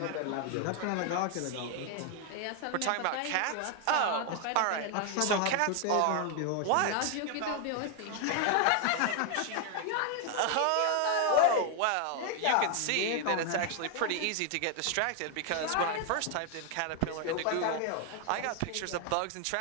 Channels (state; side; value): different; both; correlation 0.00